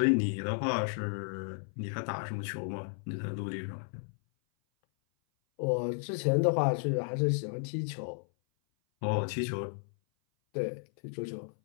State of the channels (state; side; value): silent; right; 56 dB below the other